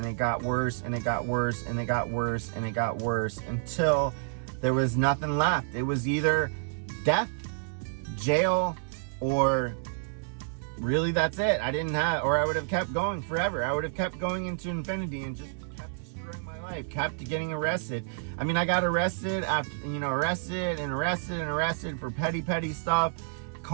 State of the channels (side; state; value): left; silent; 58 dB below the other